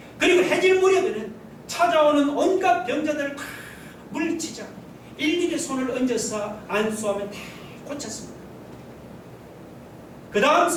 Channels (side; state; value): both; identical; correlation 1.00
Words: 그리고 해질 무렵에는 찾아오는 온갖 병자들을 다 물리치자 일일이 손을 얹어서 안수하며 다 고쳤습니다. 그 다음